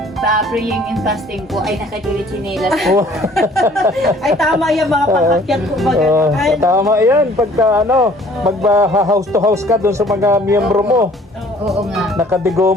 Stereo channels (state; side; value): normal; both; correlation 0.55